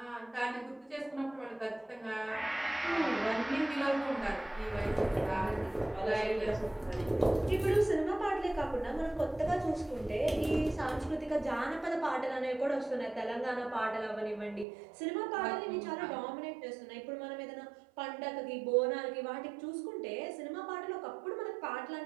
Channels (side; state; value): left; drops out; at 14.7 s